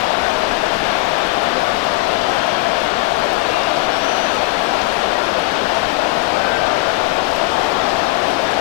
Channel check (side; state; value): right; quieter; 21.6 dB